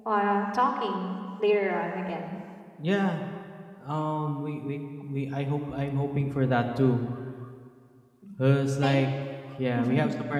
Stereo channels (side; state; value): both; identical; correlation 1.00